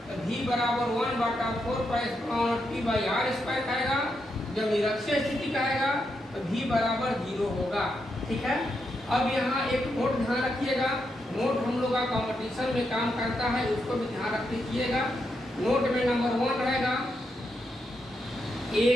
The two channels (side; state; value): both; normal; correlation 0.82